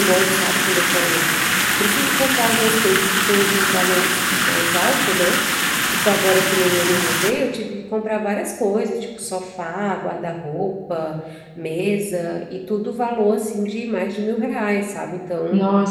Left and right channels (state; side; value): identical; both; correlation 1.00